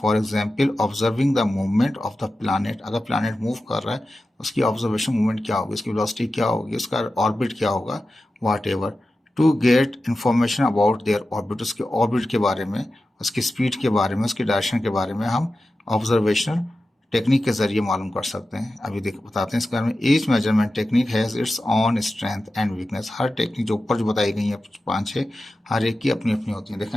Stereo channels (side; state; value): both; normal; correlation 0.93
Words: example observing the movement of the planet. अगर प्लानट मूव कर रहा है उसकी ऑब्जर्वेशन मूवमेंट क्या होगी, उसकी वेलोसिटी क्या होगी, उसका ऑर्बिट क्या होगा, whatever. To get information about their orbit. उसके ऑर्बिट के बारे में, उसकी स्पीड के बारे में, उसकी डायरेक्शन के बारे में हम ऑब्जर्वेशनल टेक्निक के जरिए मालूम कर सकते हैं। अभी बताते हैं इसके बारे में। Each measurement technique has its own strength and weakness. Her technique जो ऊपर जो बताई गई है 5-6, हर एक की अपनी अपनी होती है। देखें